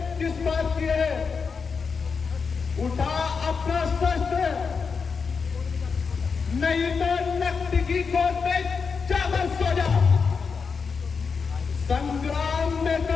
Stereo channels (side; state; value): right; quieter; 5.4 dB